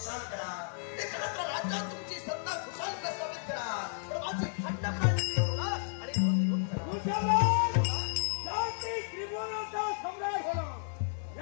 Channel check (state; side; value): silent; right; 56 dB below the other